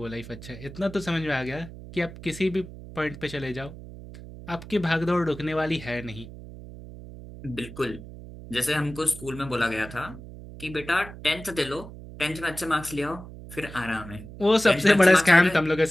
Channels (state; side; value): noise; right; hum, 14 dB below the sound